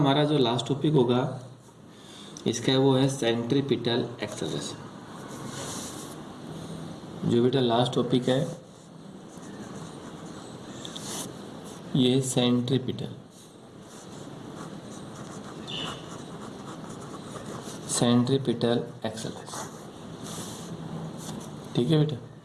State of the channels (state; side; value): identical; both; correlation 1.00